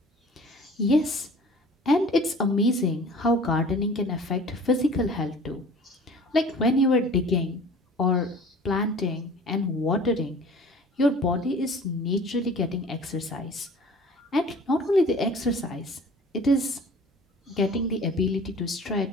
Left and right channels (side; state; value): both; normal; correlation 0.46